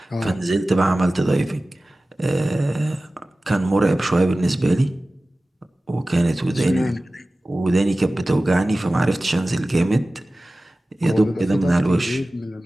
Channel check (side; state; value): both; normal; correlation 0.97